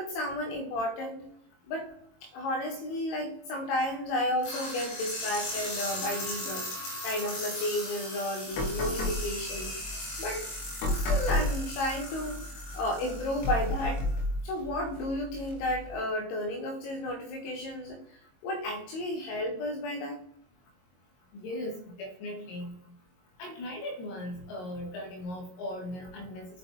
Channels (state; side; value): late; right; 22 ms